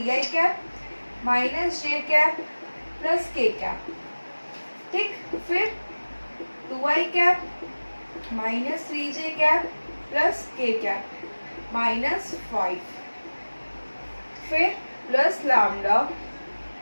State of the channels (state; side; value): inverted; both; correlation -1.00